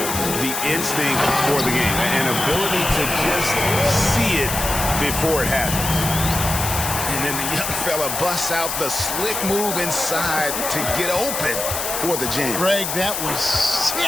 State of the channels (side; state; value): left; noise; hiss, 3 dB below the sound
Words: the instinct for the game, an ability to just see it before it happens. And then the young fella busts out the slick move inside to get open for the jam. Greg, that was